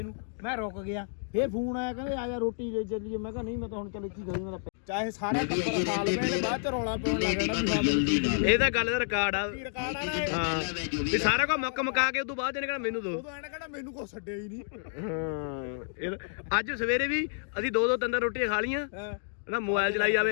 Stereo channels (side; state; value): right; silent; digital silence